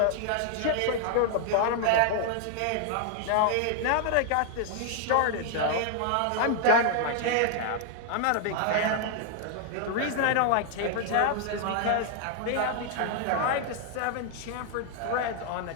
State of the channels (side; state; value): both; different; correlation 0.00